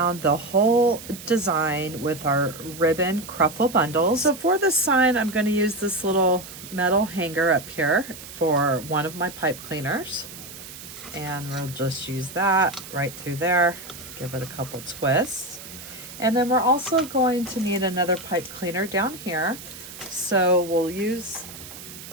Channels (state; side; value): noise; right; hiss, 14 dB below the sound